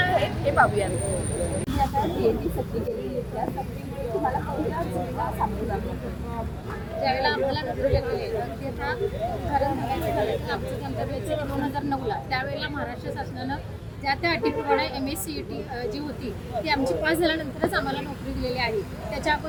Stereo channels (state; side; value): identical; both; correlation 1.00